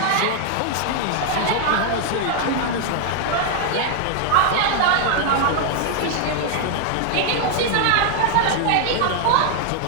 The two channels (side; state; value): both; different; correlation 0.00